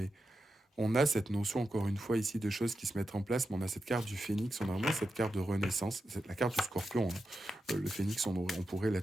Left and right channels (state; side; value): normal; both; correlation 0.89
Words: On a cette notion, encore une fois, ici, de choses qui se mettent en place, mais on a cette carte du phénix, on a vraiment cette carte de renaissance, c'est la carte du scorpion. Hein. Le phénix, on pourrait